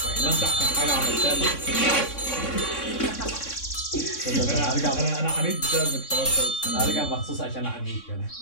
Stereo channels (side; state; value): right; late; 3.6 ms